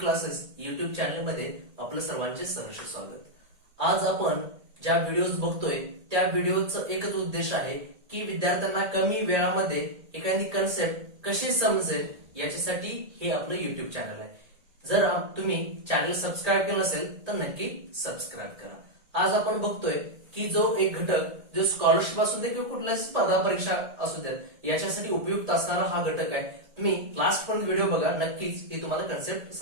युट्यूब चॅनल मध्ये आपलं सर्वांचे सहर्ष स्वागत। आज आपण ज्या व्हिडिओज बघतोय त्या व्हिडिओचा एकच उद्देश आहे की विद्यार्थ्यांना कमी वेळामध्ये एखादी कन्सेप्ट कशी समजेल याच्यासाठी हे आपलं युट्यूब चॅनल आहे। जर तुम्ही चॅनल सबस्क्राईब केलं नसेल तर नक्की सबस्क्राईब करा। आज आपण बघतोय की जो एक घटक जो स्कॉलरशिप असू दे किंवा कुठल्याही स्पर्धा परीक्षा असू देत याच्यासाठी उपयुक्त असणारा हा घटक आहे। तुम्ही लास्ट पर्यंत व्हिडिओ बघा, नक्कीच हे तुम्हाला कन्सेप्ट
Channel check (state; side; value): late; left; 1.8 ms